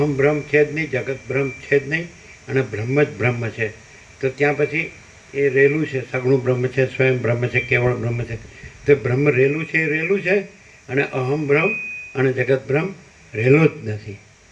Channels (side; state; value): both; identical; correlation 1.00